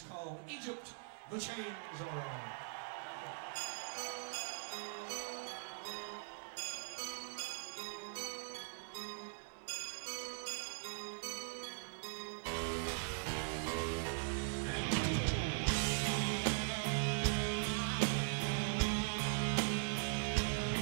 called Egypt. The Chains Are On.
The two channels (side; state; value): left; silent; digital silence